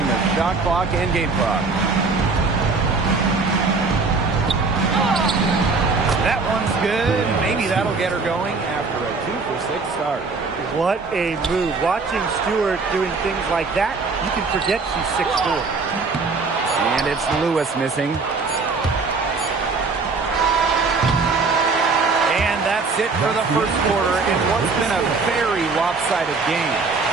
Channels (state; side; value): quieter; left; 4.2 dB